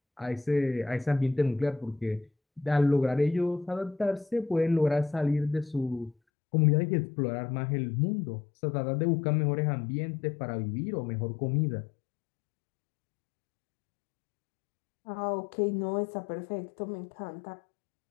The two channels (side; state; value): right; drops out; at 6.2 s